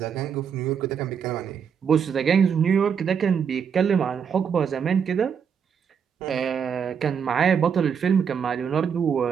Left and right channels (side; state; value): left; quieter; 7.1 dB